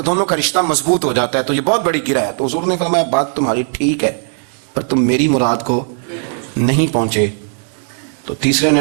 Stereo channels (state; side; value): silent; left; 58 dB below the other